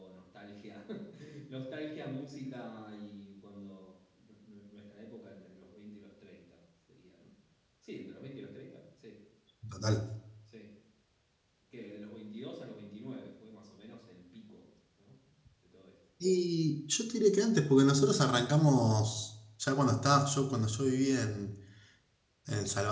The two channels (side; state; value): both; identical; correlation 1.00